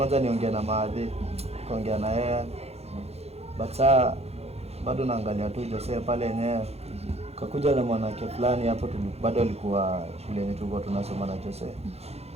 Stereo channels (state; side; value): late; left; 0.30 ms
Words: niongee na Maadhi, kaongea na yeye. But saa bado naangalia tu Jose pale yenyewe. Kakuja na mwanamke fulani hapo bado alikuwa shule yetu tulikuwa tunasoma na Jose.